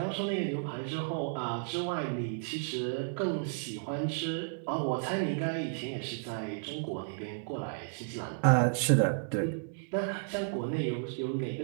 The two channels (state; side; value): silent; left; 56 dB below the other